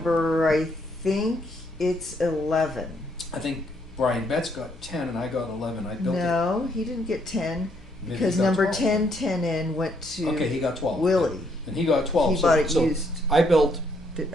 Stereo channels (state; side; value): normal; both; correlation 0.71